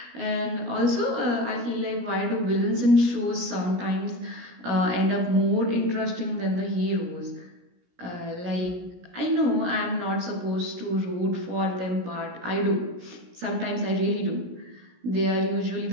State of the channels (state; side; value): late; left; 17 ms